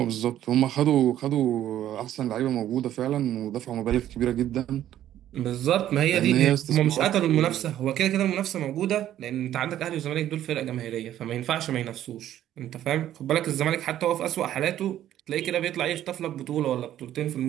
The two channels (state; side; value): quieter; left; 12.0 dB